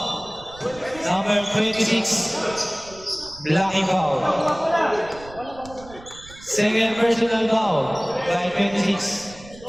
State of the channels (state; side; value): noise; right; rumble, 20 dB below the sound